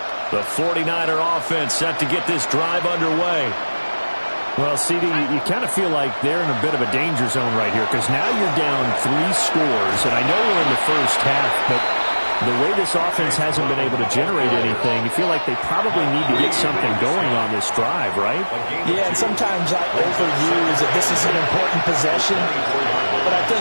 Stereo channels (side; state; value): both; inverted; correlation -1.00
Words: The 49er offense set to get this drive underway. Well, CD, you kind of feel like they're in a bit of a danger zone right here because now you're down 3 scores, and I know we're in the first half, but the way this offense hasn't been able to generate anything, you feel like they probably need to get something going on this drive, right? Yeah, and sometimes I overuse that this is an important possession, but I think